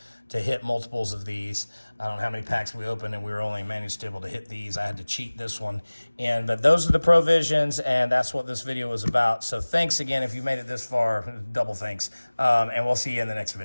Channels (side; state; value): both; inverted; correlation -1.00